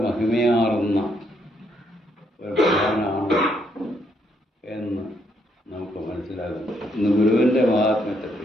മഹിമയാർന്ന ഒരു ഭഗവാനാണ് എന്ന് നമുക്ക് മനസ്സിലാകുന്നു. ഇന്ന് ഗുരുവിൻ്റെ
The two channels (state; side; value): normal; both; correlation 0.74